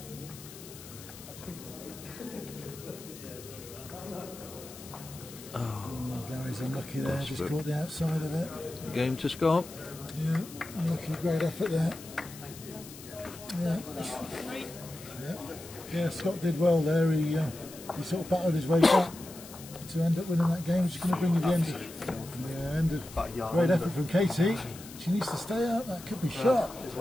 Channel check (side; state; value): left; noise; hiss, 16 dB below the sound